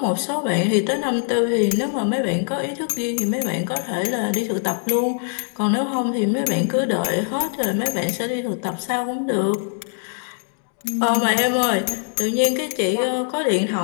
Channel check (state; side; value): silent; right; 61 dB below the other